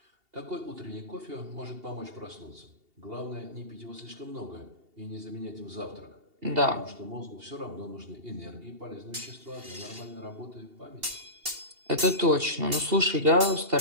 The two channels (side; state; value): left; late; 2.8 ms